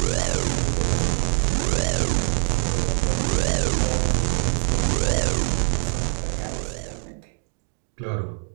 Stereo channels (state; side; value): silent; left; 63 dB below the other